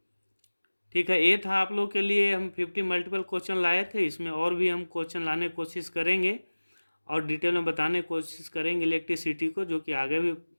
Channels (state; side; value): inverted; both; correlation -1.00